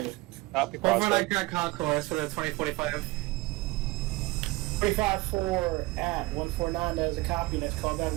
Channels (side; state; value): left; quieter; 21.2 dB